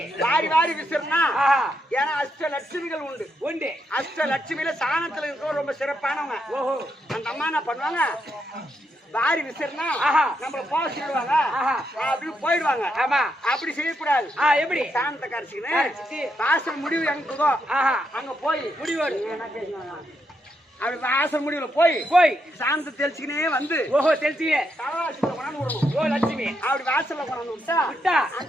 வாரி விசிறனா. ஏன்னா அஷ்டலட்சுமிகள் உண்டு. அஷ்டலட்சுமியில சாணத்துல இருக்கிற ரொம்ப சிறப்பானவங்க. ஓஹோ, அந்த அம்மா என்ன பண்ணுவாங்க? வாரி விசிறனா நம்மள போக சொல்லுவாங்க. அப்படி போயிடுவாங்க. ஆமா, அப்படி செய்யக்கூடாது. எப்படி? சாணத்தை கரைச்சிக்கின்னு வாசல் முடிவு எங்குதோ அங்க போய் முடிவு அப்படி வாசல் முடிவுல போய் சாந்தத்தை தெளிச்சுக்கினே வந்து ஓஹோ தெளிச்சுக்கினே தலவாசல கொண்டாந்து விடணும். ஓ லட்சுமி அப்படி வாசல்ல கொண்டாந்து விட்டா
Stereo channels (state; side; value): normal; both; correlation 0.80